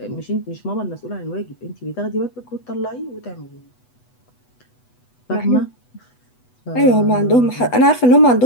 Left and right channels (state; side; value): late; right; 8.1 ms